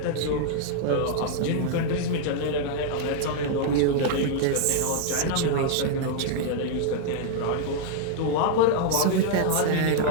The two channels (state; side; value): different; both; correlation -0.01